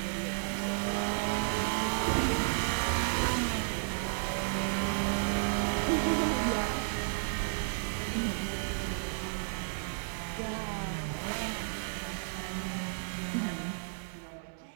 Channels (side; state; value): left; silent; 56 dB below the other